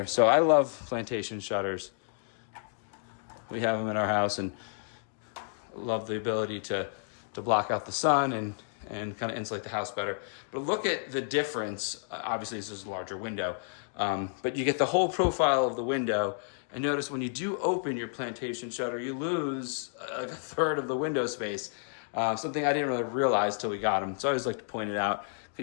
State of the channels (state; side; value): silent; right; digital silence